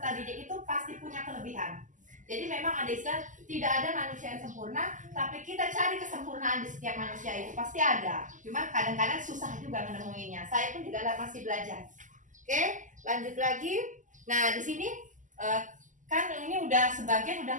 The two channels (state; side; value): late; left; 0.37 ms